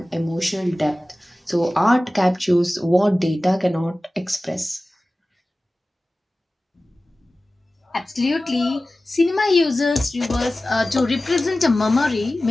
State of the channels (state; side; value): normal; both; correlation 0.96